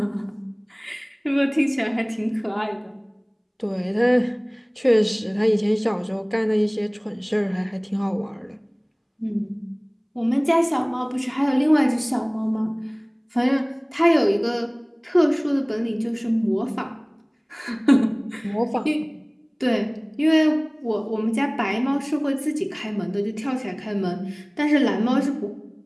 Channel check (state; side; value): identical; both; correlation 1.00